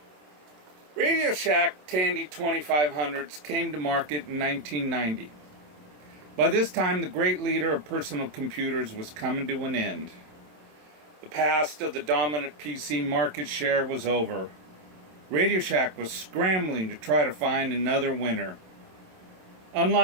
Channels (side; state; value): left; late; 27 ms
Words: Radio Shack Tandy 2500s came to market in 1990. By this time, the great leader of personal computers was coming to an end. The past of the dominant PC market share was over. Radio Shack was scrambling to try to find another winner.